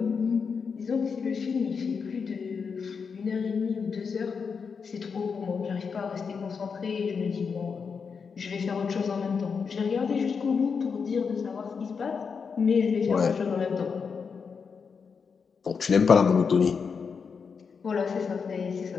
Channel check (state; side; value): quieter; right; 5.8 dB